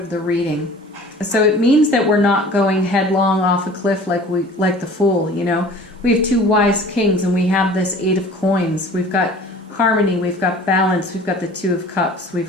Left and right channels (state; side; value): normal; both; correlation 0.45